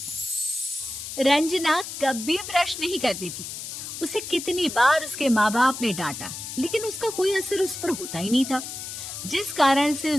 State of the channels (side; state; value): left; noise; hiss, 8 dB below the sound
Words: रंजना कभी ब्रश नहीं करती थी। उसे कितनी बार उसके माँ बाप ने डांटा, लेकिन उसका कोई असर उस पर होता ही नहीं था, जिस कारण से